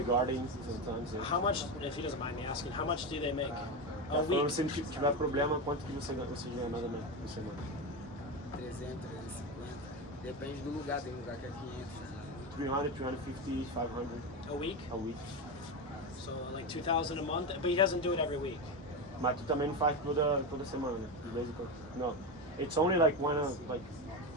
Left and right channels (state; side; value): normal; both; correlation 0.16